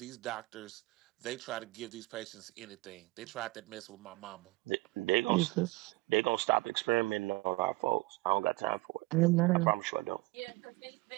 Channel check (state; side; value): quieter; left; 21.5 dB